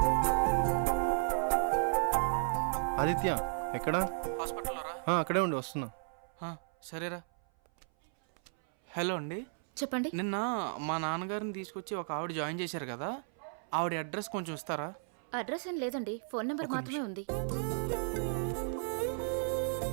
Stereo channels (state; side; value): silent; left; 55 dB below the other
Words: ఆదిత్య ఎక్కడా? హాస్పిటల్లో రా. అక్కడే ఉండి వస్తున్నా. సరేరా. హలో అండి, చెప్పండి. నిన్న మా నాన్నగారిని తీసుకొచ్చి ఒక ఆవిడ జాయిన్ చేశారు కదా, ఆవిడ అడ్రస్ కొంచెం ఇస్తారా? అడ్రస్ ఏం లేదండి, ఫోన్ నెంబర్ మాత్రమే ఉంది.